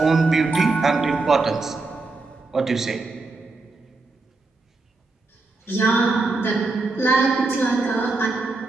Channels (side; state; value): left; quieter; 3.6 dB